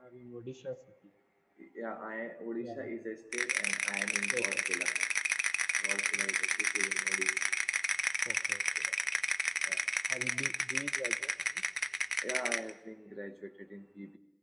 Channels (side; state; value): both; identical; correlation 1.00